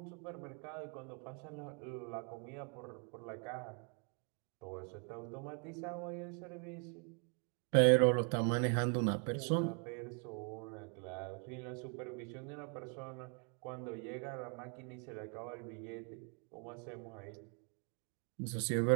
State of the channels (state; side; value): quieter; left; 38.8 dB